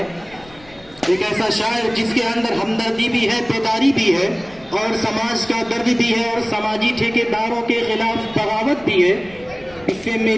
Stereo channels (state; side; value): noise; left; rumble, 24 dB below the sound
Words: एक ऐसा शायर जिसके अंदर हमदर्दी भी है, बेदारी भी है और समाज का दर्द भी है और समाजी ठेकेदारों के खिलाफ बगावत भी है। इससे